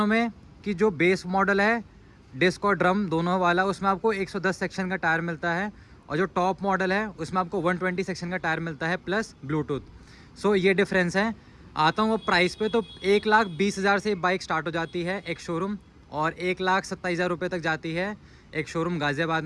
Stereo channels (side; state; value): both; identical; correlation 1.00